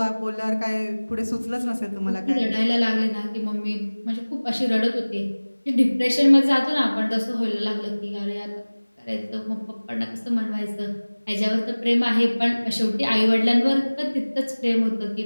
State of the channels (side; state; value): both; inverted; correlation -1.00